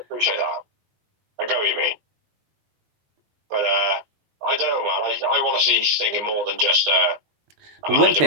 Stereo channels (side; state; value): left; late; 20 ms